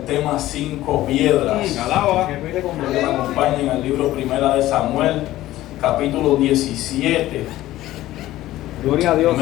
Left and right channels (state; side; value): quieter; right; 15.4 dB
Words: tema 5 piedras. Que me acompañen al libro Primera de Samuel, capítulo 17. Gloria a Dios.